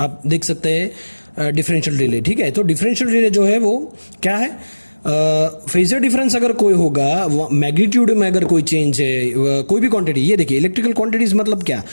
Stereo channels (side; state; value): both; inverted; correlation -1.00